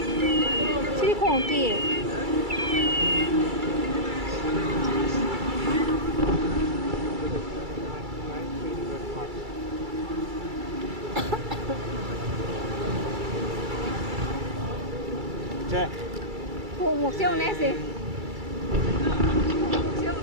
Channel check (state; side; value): late; left; 2.3 ms